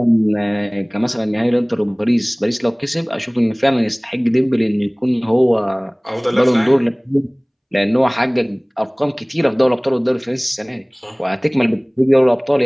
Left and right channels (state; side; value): identical; both; correlation 1.00